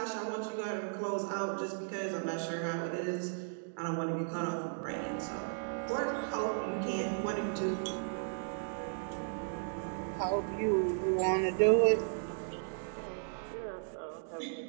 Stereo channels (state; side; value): silent; left; digital silence